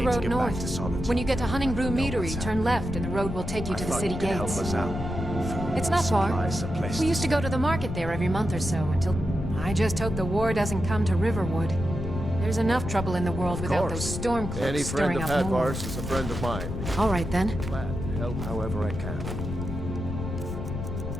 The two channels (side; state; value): left; noise; rumble, 5 dB below the sound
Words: road north. Solitude. When you get to Hunningbrew Meadery, turn left and the road will take you to the city gates. It's not far. We used to go to the market there every month or so until... I just hope the war doesn't come to Riverwood. There's enough trouble in the world without those storm cloaks Any friend stirring of up more. Hadvar's is a friend of mine. All right then. Glad to help however I can.